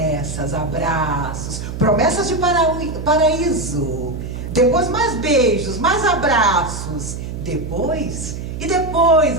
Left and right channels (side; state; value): right; noise; hum, 7 dB below the sound